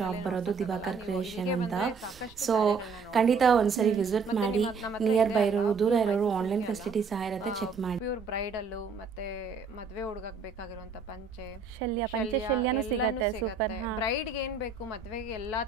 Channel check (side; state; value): left; quieter; 5.0 dB